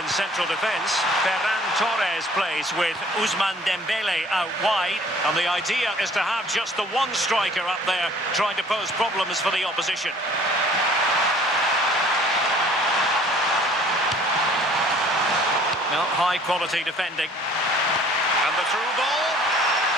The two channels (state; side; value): normal; both; correlation 0.54